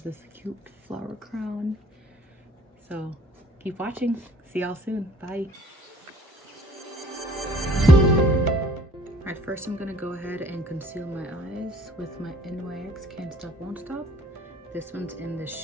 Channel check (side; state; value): both; normal; correlation 0.55